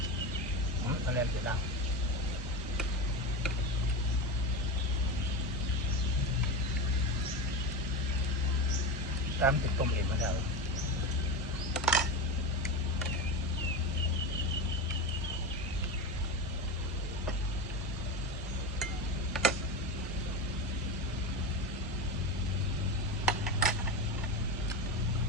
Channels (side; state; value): both; normal; correlation 0.21